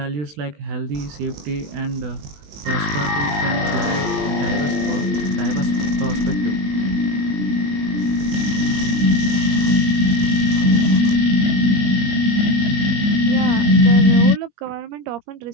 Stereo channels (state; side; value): late; left; 21 ms